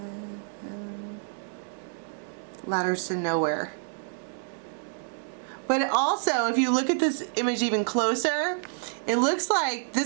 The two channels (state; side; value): silent; left; digital silence